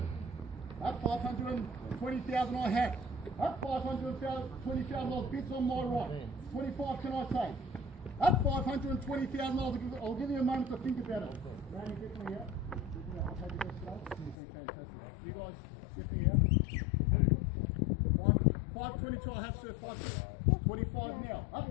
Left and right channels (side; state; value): right; drops out; at 14.4 s